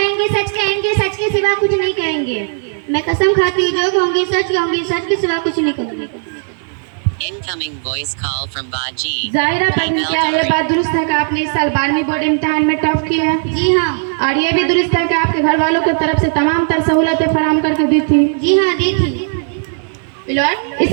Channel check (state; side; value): silent; left; digital silence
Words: सच कहेंगे, सच के सिवा कुछ नहीं कहेंगे। मैं कसम खाती हूँ, जो कहूँगी सच के सिवा कुछ नहीं कहूँगी। Incoming voice call from Baji. जाहिरा परवीन, क्या ये बात दुरुस्त है कि आपने इस साल 12वीं बोर्ड इम्तिहान में टॉप किया है? जी हाँ। और ये भी दुरुस्त है कि आपके घर वालों की तरफ से तमाम तर सहूलतें फराहम करके दी थी? जी हाँ, दी थी।